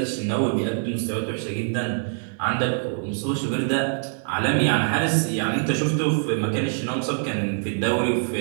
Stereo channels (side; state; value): left; silent; 59 dB below the other